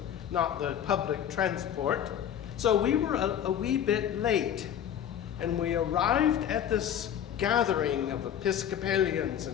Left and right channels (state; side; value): quieter; right; 9.6 dB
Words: not the public transport. So we were a wee bit late, and we arrived at this gathering of Episcopalians